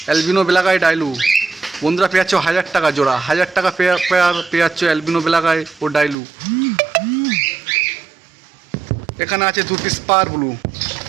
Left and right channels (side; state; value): left; drops out; at 6.2 s